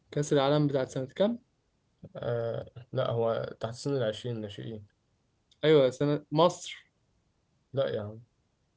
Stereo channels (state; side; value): identical; both; correlation 1.00